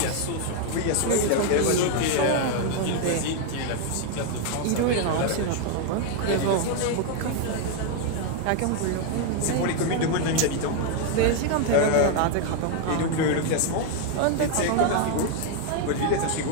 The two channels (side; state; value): both; different; correlation 0.00